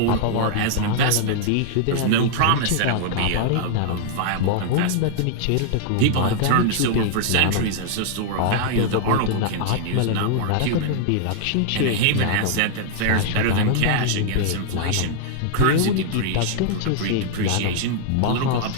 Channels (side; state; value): both; different; correlation -0.01